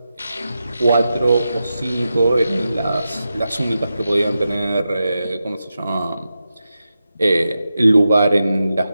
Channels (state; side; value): inverted; both; correlation -0.90